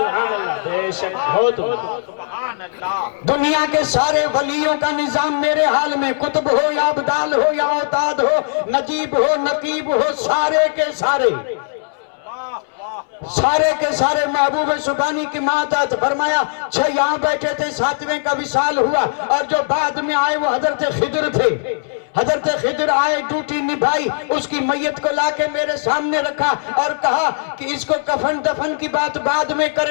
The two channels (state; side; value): silent; right; digital silence